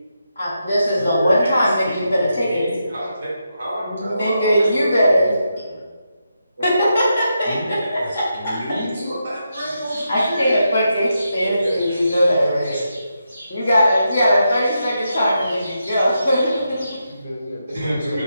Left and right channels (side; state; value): both; inverted; correlation -0.84